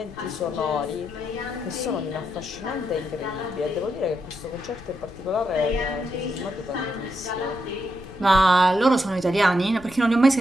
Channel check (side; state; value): left; noise; rumble, 20 dB below the sound